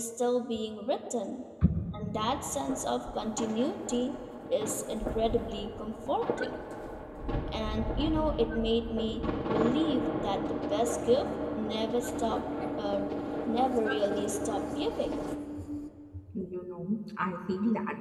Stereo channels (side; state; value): both; identical; correlation 1.00